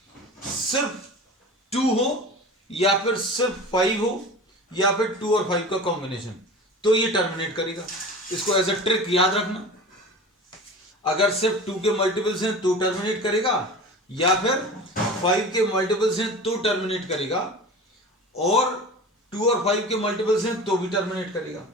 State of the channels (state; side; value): normal; both; correlation 0.35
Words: सिर्फ 2 हो, या फिर सिर्फ 5 हो, या फिर 2 और 5 का कॉम्बिनेशन, तो ये टर्मिनेट करेगा। इसको एज अ ट्रिक याद रखना, अगर सिर्फ 2 के मल्टीपल्स हैं तो टर्मिनेट करेगा, या फिर 5 के मल्टीपल्स हैं तो टर्मिनेट करेगा, और 2 और 5 के मल्टीपल्स हैं तो भी टर्मिनेट करेगा,